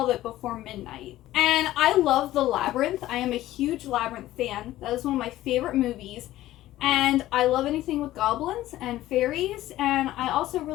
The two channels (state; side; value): quieter; right; 15.1 dB